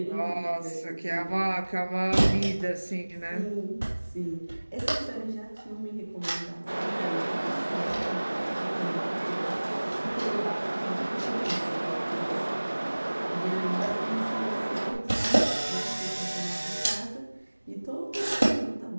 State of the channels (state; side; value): inverted; both; correlation -1.00